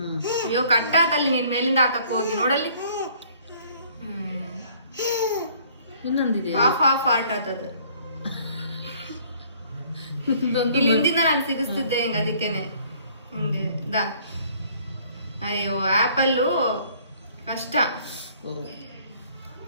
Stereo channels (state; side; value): inverted; both; correlation -0.58